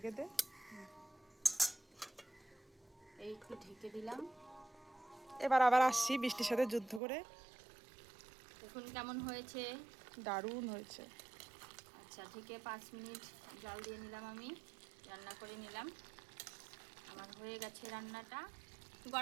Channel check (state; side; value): drops out; left; at 7.0 s